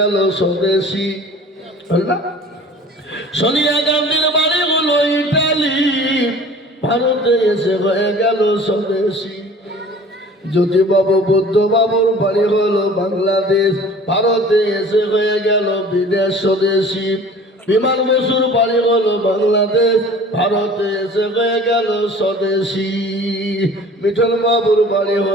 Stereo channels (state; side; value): normal; both; correlation 0.46